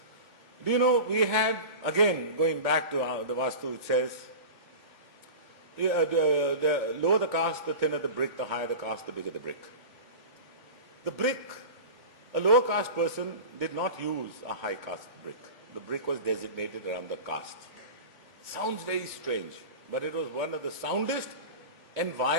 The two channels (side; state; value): left; late; 3.5 ms